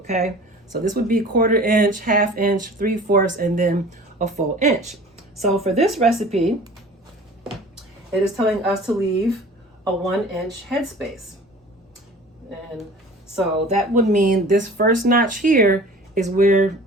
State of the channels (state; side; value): normal; both; correlation 0.44